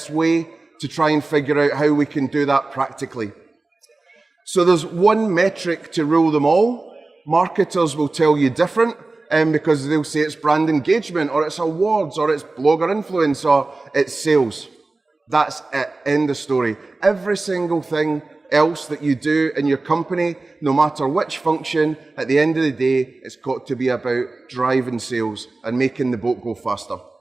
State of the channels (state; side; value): quieter; left; 3.3 dB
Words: way to try and figure out how we can do that practically. So there's one metric to rule them all. Marketers will tell you different because they'll say it's brand engagement, or it's awards, or it's blogger influence, or it's sales. That's it, end of story. Every single thing else that you do in your company, no matter which function, at the end of the day, it's got to be about driving sales and making the boat go faster.